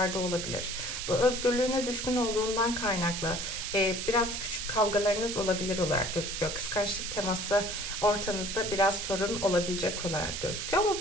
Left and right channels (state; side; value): noise; right; hiss, 4 dB below the sound